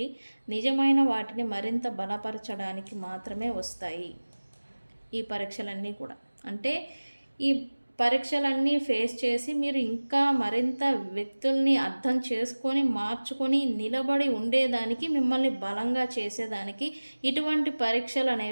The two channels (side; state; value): both; inverted; correlation -1.00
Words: నిజమైన వాటిని మరింత బలపరచడానికి మాత్రమే వస్తాయి ఈ పరీక్షలన్నీ కూడా. అంటే ఈ పరీక్షలన్నీ ఫేస్ చేసి మీరు ఇంకా మరింత వ్యక్తుల్ని అర్థం చేసుకొని, మార్చుకొని, నిలబడి ఉండేదానికి, మిమ్మల్ని బలంగా చేసేదానికి ఇటువంటి పరీక్షలు